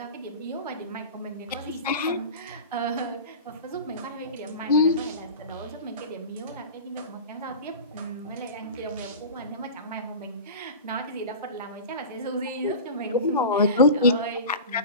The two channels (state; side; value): inverted; both; correlation -0.32